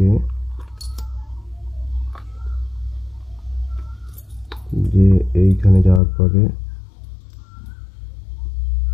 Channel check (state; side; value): drops out; right; at 6.0 s